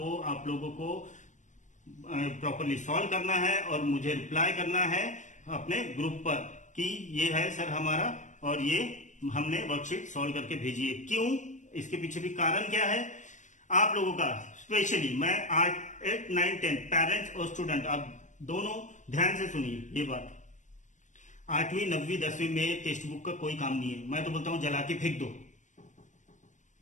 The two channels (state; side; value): late; right; 0.35 ms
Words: आप लोगों को प्रॉपरली सॉल्व करना है और मुझे रिप्लाई करना है अपने ग्रुप पर कि ये है सर हमारा और ये हमने वर्कशीट सॉल्व करके भेजी है। क्यों, इसके पीछे भी कारण क्या है आप लोगों का, स्पेशली मैं 8th, 9th, 10th पेरेंट्स और स्टूडेंट, आप दोनों ध्यान से सुनिए ये बात। 8वीं 9वीं 10वीं में टेक्स्ट बुक का कोई काम नहीं है। मैं तो बोलता हूं जला के फेंक दो,